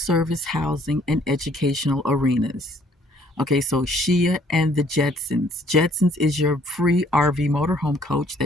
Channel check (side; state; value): both; normal; correlation 0.62